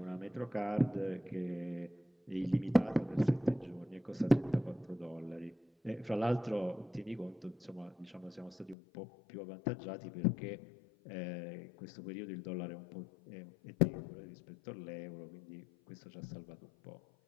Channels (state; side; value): drops out; right; at 8.8 s